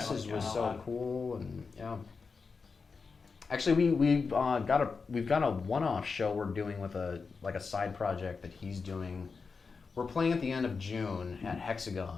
so cool, and yeah. Actually, we've got a one-off show we're doing with a side project that he's doing. We're playing at the end of June at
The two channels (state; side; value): quieter; right; 4.9 dB